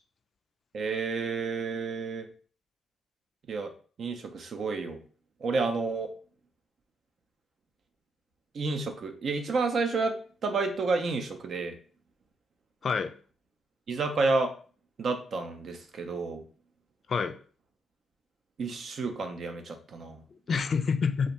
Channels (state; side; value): normal; both; correlation 0.76